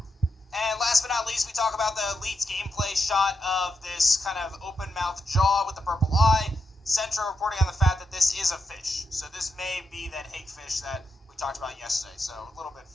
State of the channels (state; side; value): normal; both; correlation 0.85